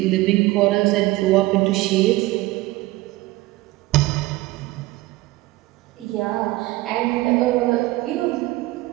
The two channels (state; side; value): quieter; left; 19.1 dB